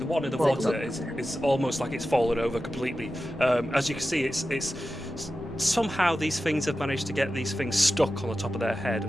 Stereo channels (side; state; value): both; normal; correlation 0.93